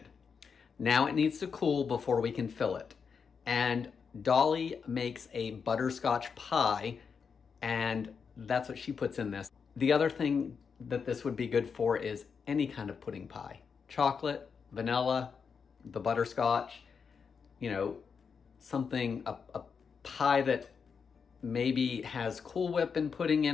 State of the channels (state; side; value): quieter; right; 6.0 dB